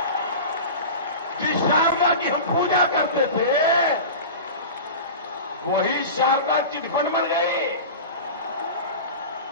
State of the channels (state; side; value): inverted; both; correlation -0.31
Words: जिस शारदा की हम पूजा करते थे, वही शारदा चिटफंड बन गई।